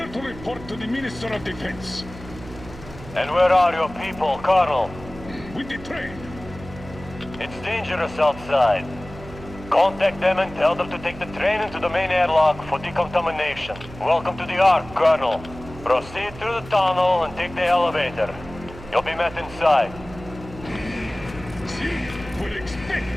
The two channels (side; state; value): right; noise; hum, 15 dB below the sound